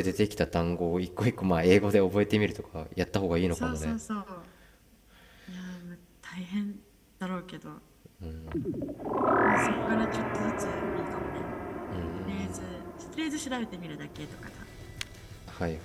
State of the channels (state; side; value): identical; both; correlation 1.00